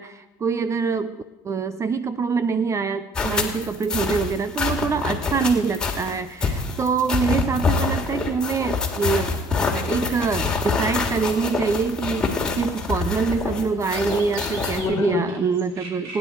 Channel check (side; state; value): both; normal; correlation 0.58